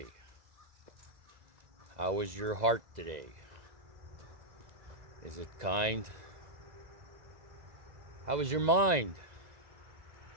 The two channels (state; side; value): late; left; 2.0 ms